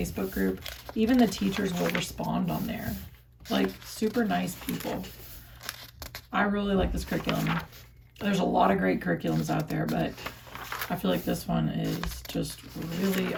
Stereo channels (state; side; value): identical; both; correlation 1.00